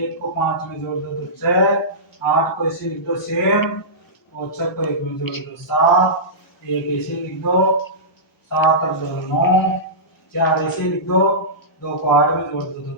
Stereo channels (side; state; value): both; normal; correlation -0.17